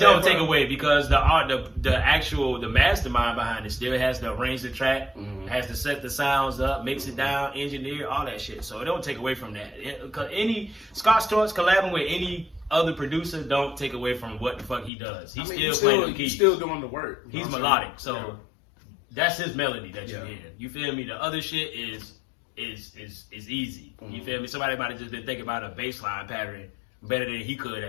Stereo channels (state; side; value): drops out; right; at 14.9 s